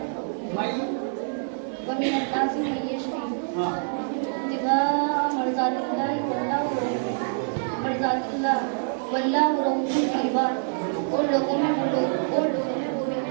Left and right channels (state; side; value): silent; left; digital silence